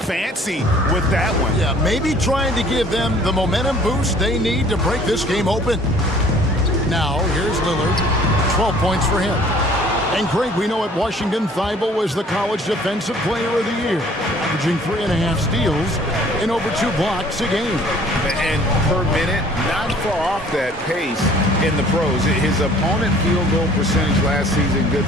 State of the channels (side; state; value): both; normal; correlation 0.54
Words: with that one. Yeah, maybe trying to give them the momentum boost they need to break this game open. Now, here's Lillard. 12 points for him. And Greg, we know at Washington, Thybulle was the college defensive player of the year, averaging 3.5 steals and over 2 blocks a game. And per minute, not far off that pace in the pros. His opponent field goal percentage last season good